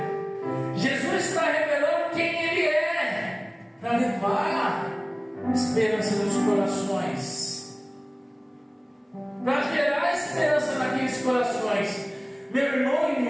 Jesus está revelando quem Ele é, para levar esperança nos corações, para gerar esperança naqueles corações. Meu irmão e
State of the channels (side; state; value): both; identical; correlation 1.00